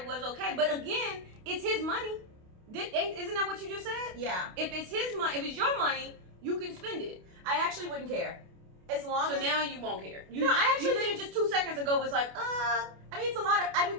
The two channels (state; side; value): late; left; 28 ms